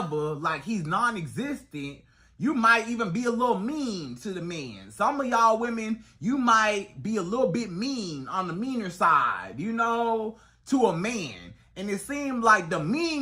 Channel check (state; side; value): identical; both; correlation 1.00